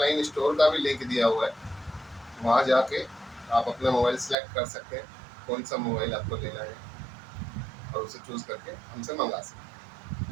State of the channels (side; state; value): left; drops out; at 4.4 s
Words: स्टोर का भी लिंक दिया हुआ है, वहाँ जाके आप अपना मोबाइल सेलेक्ट कर सकते हैं कौन सा मोबाइल आपको लेना है और उसे चूज़ करके हमसे मंगा सकते हैं।